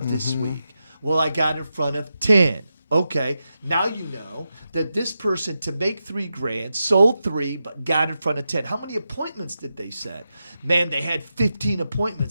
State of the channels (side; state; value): both; inverted; correlation -0.89